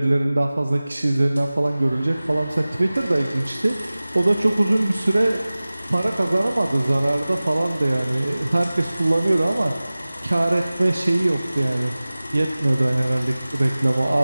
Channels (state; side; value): inverted; both; correlation -0.98